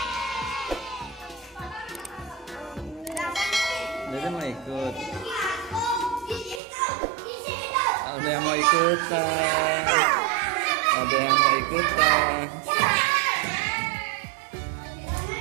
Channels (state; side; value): drops out; left; at 6.6 s